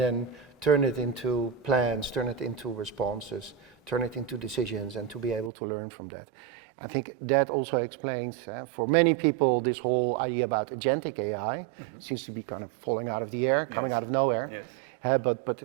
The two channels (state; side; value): drops out; left; at 5.5 s